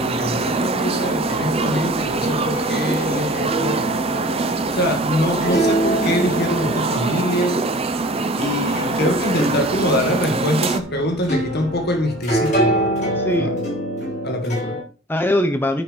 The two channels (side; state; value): both; normal; correlation 0.44